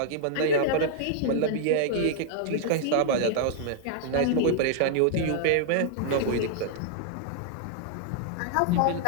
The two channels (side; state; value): both; different; correlation -0.01